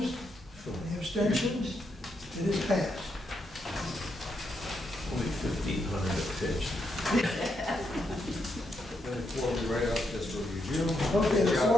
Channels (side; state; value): both; normal; correlation 0.80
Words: Any abstentions? It is passed. Only 1,500 a pitch. Then the floor will be right up just for review. Okay, the